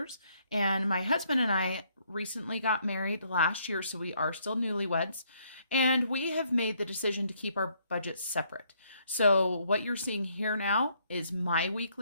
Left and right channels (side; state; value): both; inverted; correlation -0.69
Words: and my husband and I recently got married last year, so we are still newlyweds, and we have made the decision to keep our budgets separate. So what you're seeing here now is my